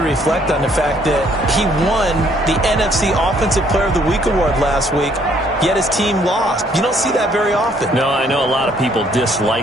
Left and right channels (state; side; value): normal; both; correlation 0.65